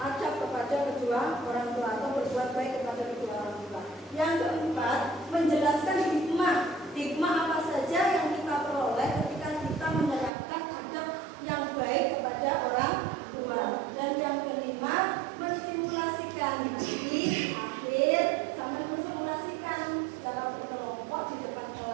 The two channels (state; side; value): drops out; left; at 10.3 s